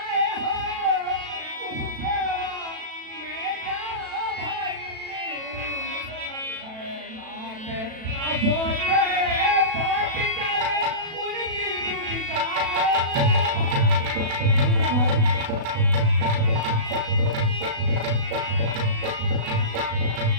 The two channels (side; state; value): left; late; 36 ms